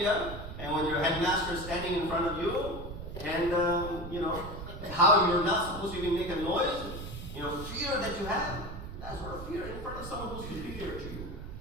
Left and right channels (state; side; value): noise; right; rumble, 9 dB below the sound